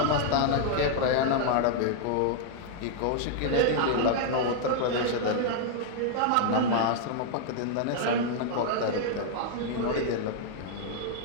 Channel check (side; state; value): both; different; correlation 0.00